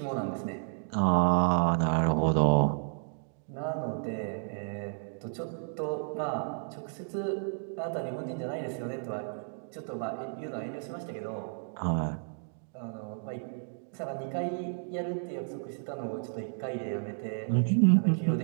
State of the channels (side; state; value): left; silent; digital silence